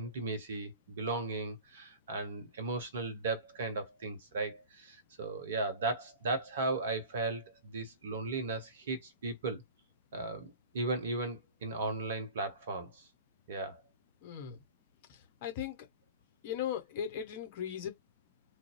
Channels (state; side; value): inverted; both; correlation -0.37